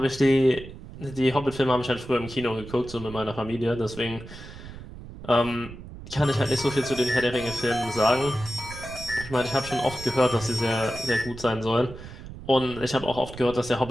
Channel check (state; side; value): noise; right; rumble, 14 dB below the sound